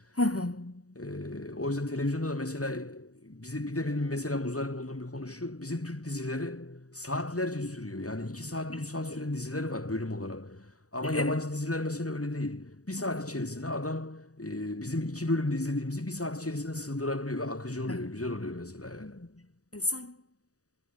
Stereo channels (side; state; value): right; late; 0.66 ms